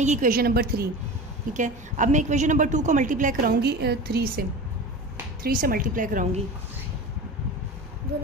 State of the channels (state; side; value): normal; both; correlation 0.31